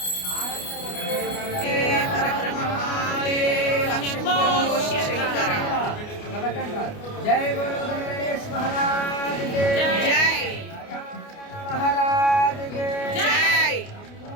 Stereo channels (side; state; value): right; late; 29 ms